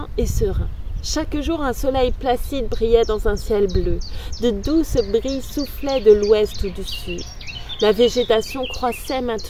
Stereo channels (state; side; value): identical; both; correlation 1.00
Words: et serein. Chaque jour, un soleil placide brillait dans un ciel bleu. De douces brises soufflaient de l'ouest ou du sud. La végétation croissait